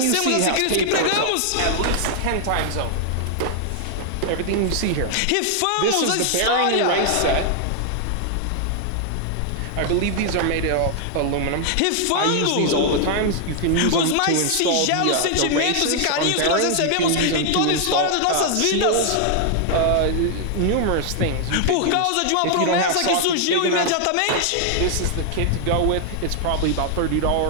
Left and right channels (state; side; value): different; both; correlation 0.00